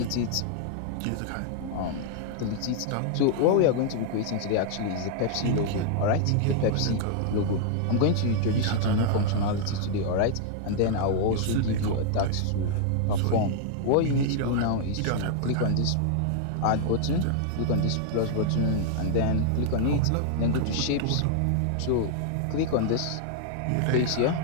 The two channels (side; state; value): both; different; correlation -0.01